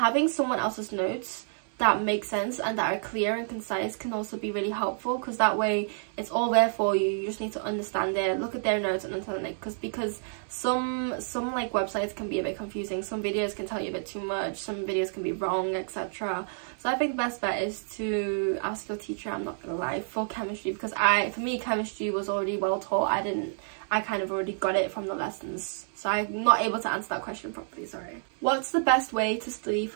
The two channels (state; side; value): silent; left; digital silence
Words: someone else's notes that make sense and that are clear and concise can also be really helpful, because that way it's all there for you. You just need to understand it, look at their notes and understand it, because some like websites can be a bit confusing, some videos can tell you a bit too much, some videos can be wrong, etc. So I think the best bet is to ask your teacher, I'm not gonna lie, for chemistry, because for me chemistry was already well taught. I kind of already got it from the lessons, so I'm not able to answer that question properly, sorry. What's the best way to study